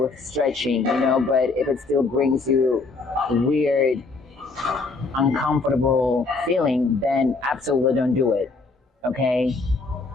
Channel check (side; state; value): right; quieter; 3.8 dB